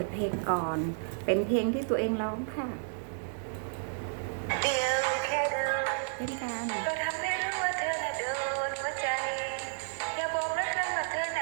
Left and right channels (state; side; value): silent; left; digital silence